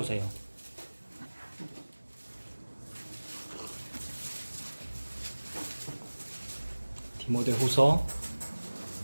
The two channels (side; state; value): both; inverted; correlation -1.00